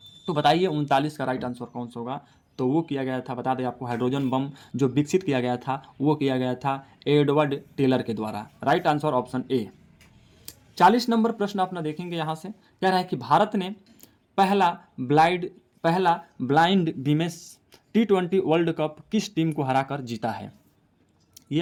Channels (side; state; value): both; identical; correlation 1.00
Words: तो बताइए 39 का राइट आंसर कौन सा होगा? तो वो किया गया था, बता दें आपको, हाइड्रोजन बम जो विकसित किया गया था वो किया गया था एडवर्ड टेलर के द्वारा। Right answer option A. 40 number प्रश्न अपना देखेंगे यहाँ से, कह रहा है कि भारत ने पहला blind women's T20 world cup किस टीम को हराकर जीता है? ये